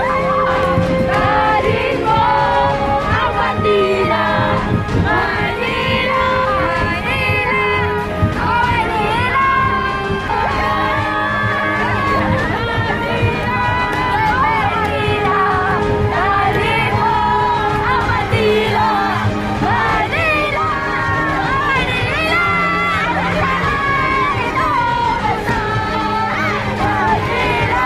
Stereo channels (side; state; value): both; identical; correlation 1.00